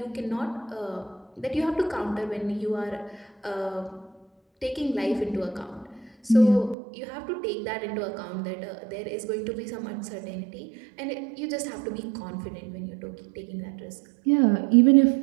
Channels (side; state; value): left; drops out; at 6.8 s